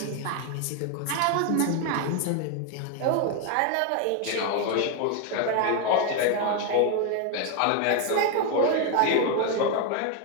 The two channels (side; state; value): both; different; correlation 0.01